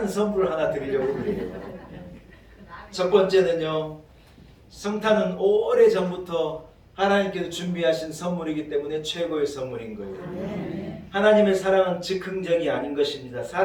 선물을 하나 드리려고 그래요. 첫 번째는요, 성탄은 오래전부터 하나님께서 준비하신 선물이기 때문에 최고의 선물인 거예요. 하나님의 사랑은 즉흥적이 아닌 것입니다.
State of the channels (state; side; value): identical; both; correlation 1.00